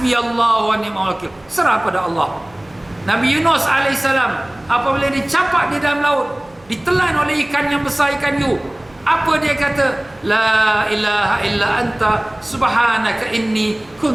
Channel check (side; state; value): right; noise; hum, 29 dB below the sound